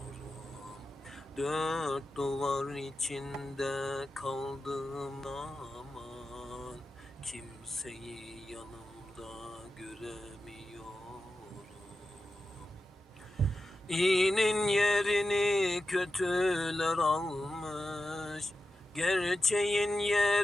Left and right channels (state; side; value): normal; both; correlation 0.92